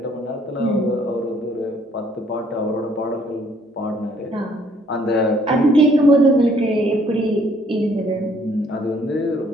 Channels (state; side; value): normal; both; correlation 0.63